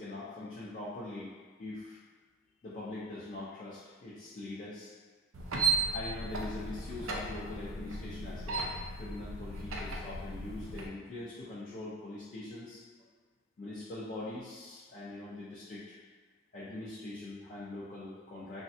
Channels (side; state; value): both; normal; correlation 0.32